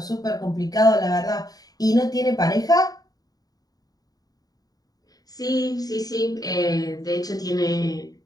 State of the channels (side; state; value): right; late; 0.18 ms